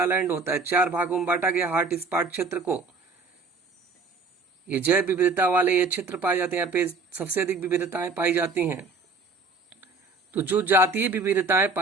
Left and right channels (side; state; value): left; quieter; 4.0 dB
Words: होता है। 4 भागों में बांटा गया हॉट स्पॉट क्षेत्र को। ये जैव विविधता वाले ये क्षेत्र पाए जाते हैं, यहाँ पे सबसे अधिक विविधताएं पाई जाती हैं। तो जो जातीय विविधताएं